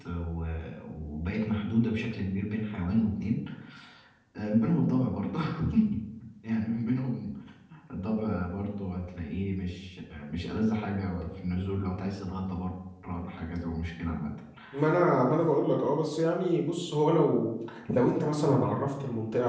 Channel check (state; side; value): identical; both; correlation 1.00